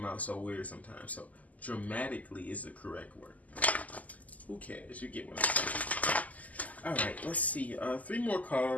out so weird sometimes. So dramatically is the correct word. Who cares? You get what I'm saying. All right, let's see. 3 more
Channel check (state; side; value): late; right; 0.076 ms